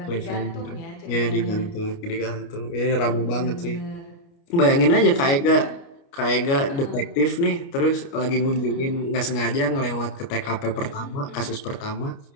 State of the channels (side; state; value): right; late; 29 ms